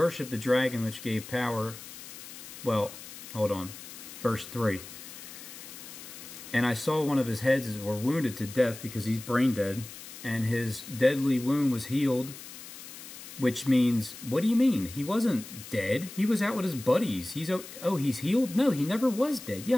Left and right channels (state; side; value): noise; left; hiss, 14 dB below the sound